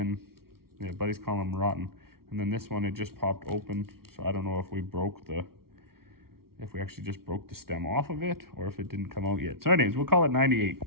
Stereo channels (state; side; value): late; left; 0.94 ms